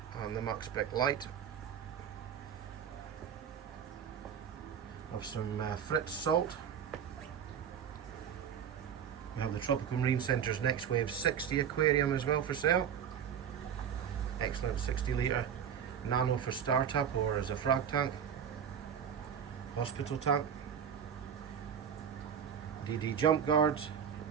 and the Max Spec light. Of some Fritz salt. We have the Tropical Marine Centre's Next Wave 60 aquarium as well for sale. Excellent 60 litre nano for startup or as a frag tank, hospital tank, DD jump guards,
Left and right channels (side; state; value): left; quieter; 8.1 dB